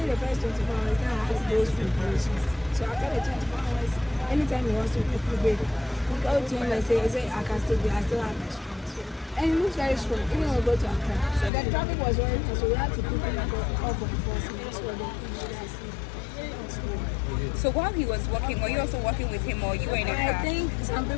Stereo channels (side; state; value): right; drops out; at 11.5 s